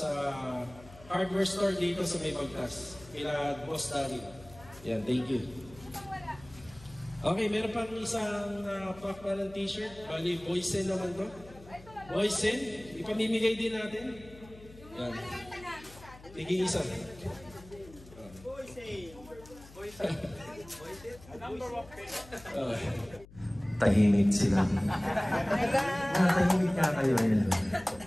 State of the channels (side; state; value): left; noise; hum, 20 dB below the sound